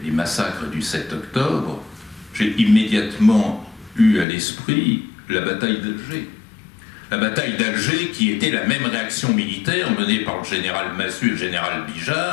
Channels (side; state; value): right; drops out; at 4.2 s